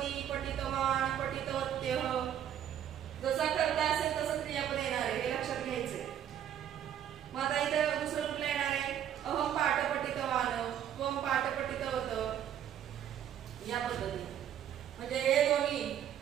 पठितवान, पठितवत्यः जसा कर्ता असेल तसं क्रियापद येणार आहे, हे लक्षात घ्यायचंय. मग आता इथं दुसरं कुठलं येणार आहे? अहम पाठ पठितवान, त्वम पाठ पठितवत या पद्धतीने. म्हणजे हे दोन्ही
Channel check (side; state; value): left; quieter; 10.1 dB